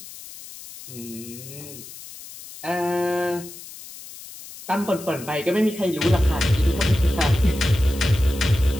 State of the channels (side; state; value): left; noise; hiss, 15 dB below the sound